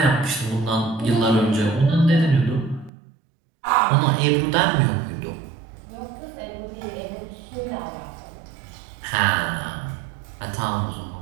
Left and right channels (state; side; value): drops out; left; at 2.9 s